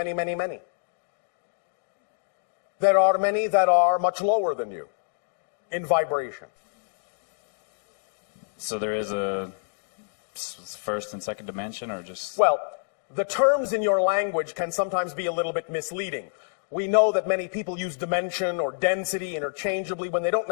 many, many. There are many that are much lower than you in vibration. So there is a first and second dimension, or just... Well, the terms in your language can sometimes be a little bit misleading. We know that many people use dimension or density interchangeably when they don't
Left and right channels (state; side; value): silent; right; digital silence